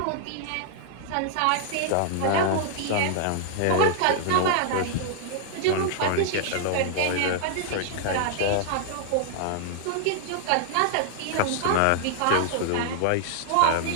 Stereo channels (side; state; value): both; different; correlation -0.01